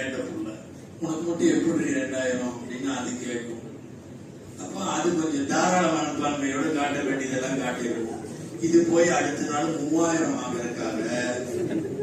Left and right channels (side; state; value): both; identical; correlation 1.00